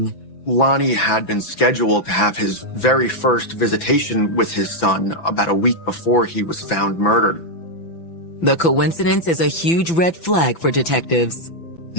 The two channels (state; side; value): late; right; 5.9 ms